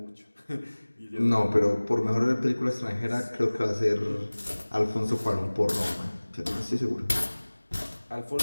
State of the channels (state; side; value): inverted; both; correlation -1.00